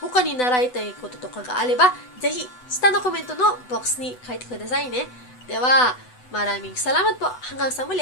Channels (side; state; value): right; late; 8.0 ms